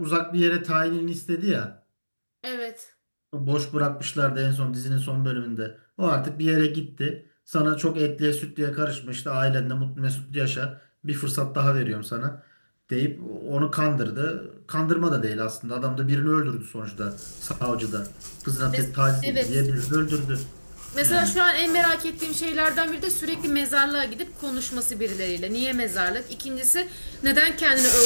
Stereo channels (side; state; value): both; inverted; correlation -1.00